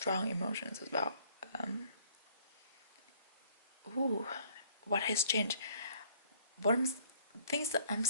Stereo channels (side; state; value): both; inverted; correlation -0.60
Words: emotions as well. What has changed? Things that I'm